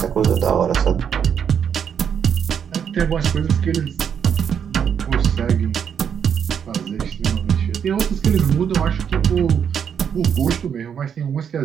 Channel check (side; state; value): left; quieter; 7.8 dB